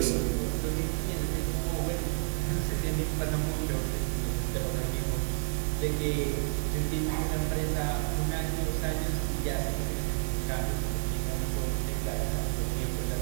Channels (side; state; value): left; silent; digital silence